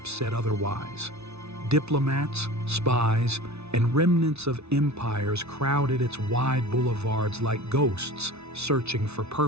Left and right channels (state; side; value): late; left; 0.80 ms